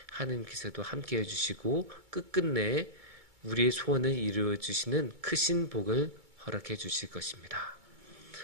하나님께서도 함께 해주시고 끝끝내 우리의 소원을 이루어 주시는 크신 복을 허락해 주실 것입니다.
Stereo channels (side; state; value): left; late; 2.2 ms